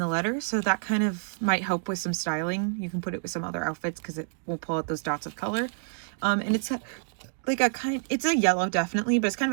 letter, so that kind of might help with some styling. You can put it with some other outfits because it will pull out those dots of color. And it's like it's a yellow definitely, but it's kind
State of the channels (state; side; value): silent; left; digital silence